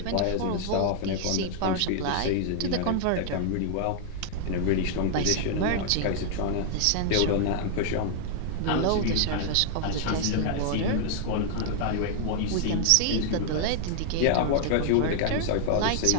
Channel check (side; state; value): both; different; correlation -0.01